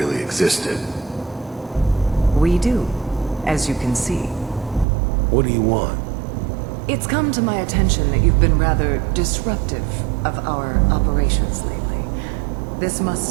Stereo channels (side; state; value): left; drops out; at 4.9 s